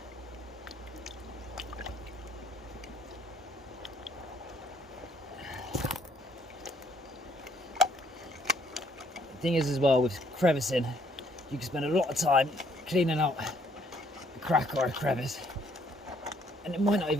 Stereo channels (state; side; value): normal; both; correlation 0.65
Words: The thing is as well with crevicing, you can spend a lot of time cleaning out a crack or a crevice and it might not